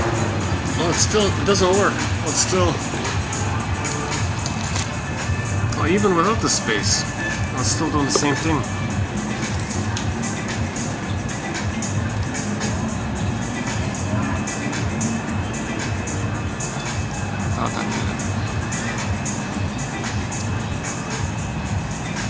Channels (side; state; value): both; identical; correlation 1.00